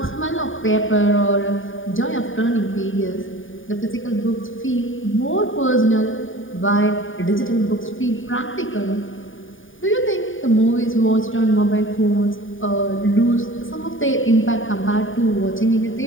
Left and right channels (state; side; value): late; right; 0.57 ms